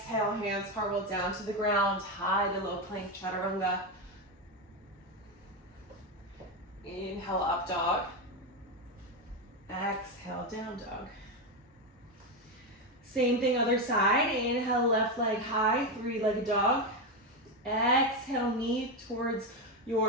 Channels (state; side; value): normal; both; correlation 0.11